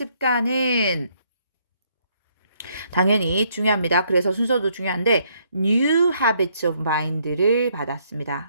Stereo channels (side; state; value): both; inverted; correlation -0.70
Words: 당연히 중요합니다. 그래서 순서도 중요한데 new habits of mind를